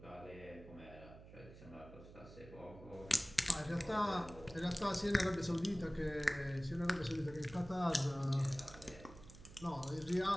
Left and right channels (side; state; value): right; noise; hum, 17 dB below the sound